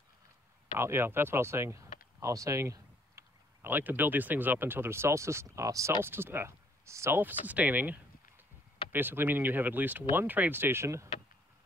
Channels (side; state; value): both; normal; correlation 0.64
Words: Yeah, that's what I was saying. I was saying I like to build these things up until they're self-sustaining. Basically meaning you have at least one trade station,